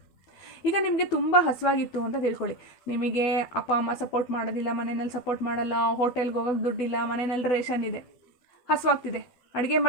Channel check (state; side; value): late; right; 12 ms